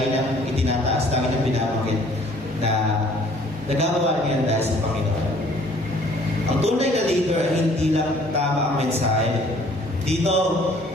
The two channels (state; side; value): normal; both; correlation 0.57